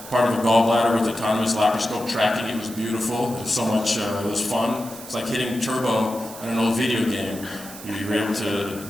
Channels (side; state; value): right; noise; hiss, 14 dB below the sound